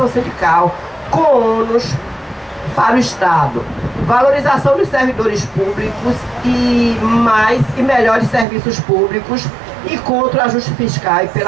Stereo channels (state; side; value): drops out; left; at 8.5 s